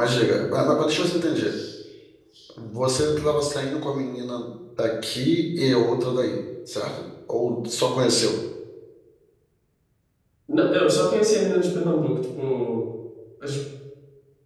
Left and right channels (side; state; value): both; identical; correlation 1.00